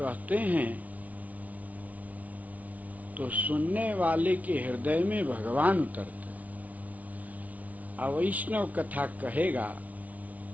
हैं तो सुनने वाले के हृदय में भगवान उतरते हैं। अवैष्णव कथा कहेगा,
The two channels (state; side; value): late; left; 0.071 ms